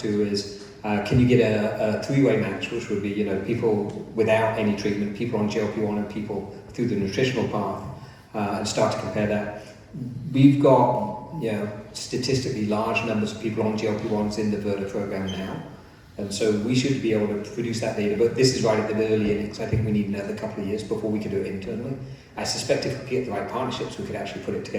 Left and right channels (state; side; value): identical; both; correlation 1.00